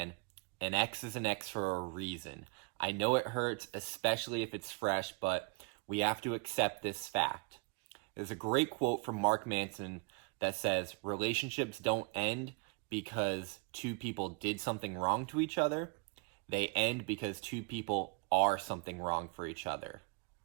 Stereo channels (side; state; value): left; quieter; 30.8 dB